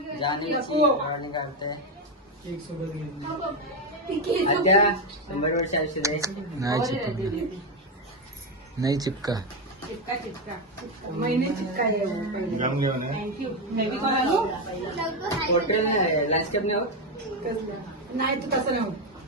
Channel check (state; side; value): normal; both; correlation 0.09